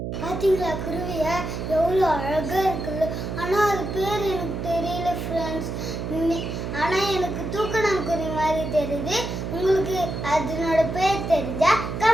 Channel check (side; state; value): right; noise; hum, 5 dB below the sound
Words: பார்த்தீங்களா குருவிய எவ்வளோ அழகாக இருக்குல்ல. ஆனால் அது பேர் எனக்கு தெரியல ஃப்ரெண்ட்ஸ். ஆனால் எனக்கு தூக்கணாங்குருவி மாதிரி தெரியுது. உங்களுக்கு அதனோட பேர் தெரிஞ்சா